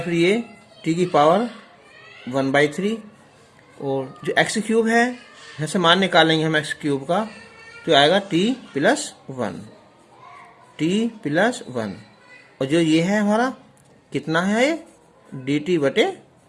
फिर ये t की पावर 1/3 और जो x क्यूब है यहाँ से मान निकालेंगे हम x क्यूब का, तो आएगा t + 1 और जो ये है हमारा कितना है, ये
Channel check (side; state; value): both; identical; correlation 1.00